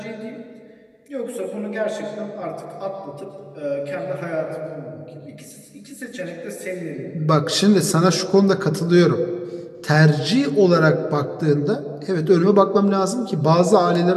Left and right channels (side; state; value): both; identical; correlation 1.00